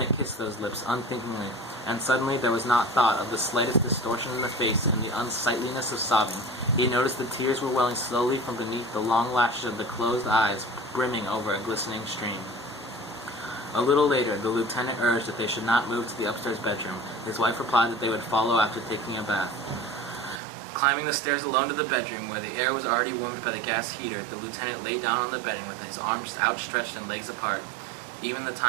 kissed those lips unthinkingly, and suddenly there was not thought of the slightest distortion in the face and the unsightliness of sobbing. He noticed the tears were welling slowly from beneath the long lashes of the closed eyes, brimming over a glistening stream. A little later, the lieutenant urged that they should not move to the upstairs bedroom. His wife replied that they would follow after taking a bath. Climbing the stairs alone to the bedroom, where the air was already warmed by the gas heater, the lieutenant lay down on the bedding with his arms outstretched and legs apart. Even the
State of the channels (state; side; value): drops out; left; at 20.4 s